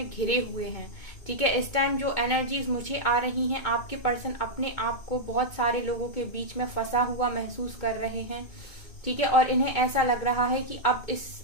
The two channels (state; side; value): late; right; 2.2 ms